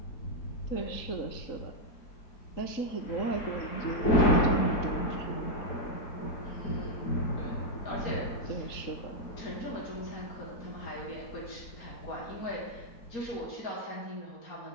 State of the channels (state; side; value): late; right; 3.8 ms